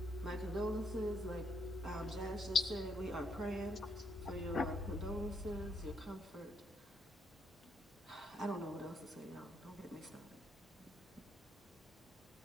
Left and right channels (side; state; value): both; normal; correlation 0.74